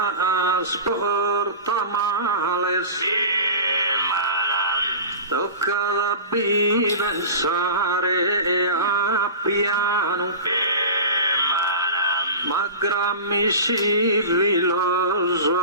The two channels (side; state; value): both; inverted; correlation -0.33